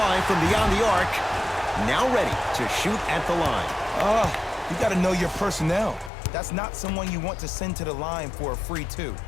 from beyond the arc. Now ready to shoot at the line. You got to know your personnel. That's not someone you want to send to the line for a free 2.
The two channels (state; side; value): drops out; right; at 6.1 s